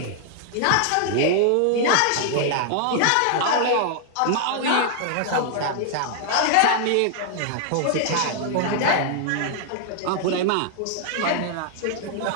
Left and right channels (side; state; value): both; different; correlation 0.00